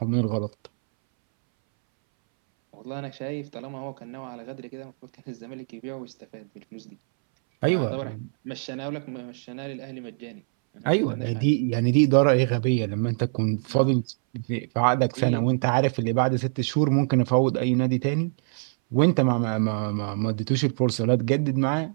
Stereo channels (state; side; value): silent; left; 62 dB below the other